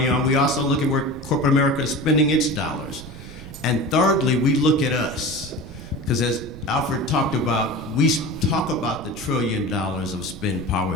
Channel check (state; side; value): noise; right; rumble, 14 dB below the sound